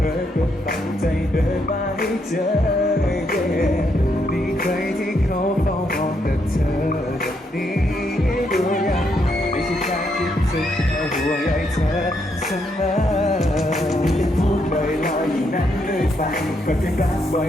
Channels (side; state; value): both; normal; correlation 0.77